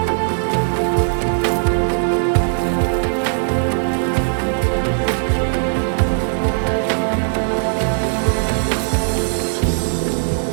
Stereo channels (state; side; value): silent; left; digital silence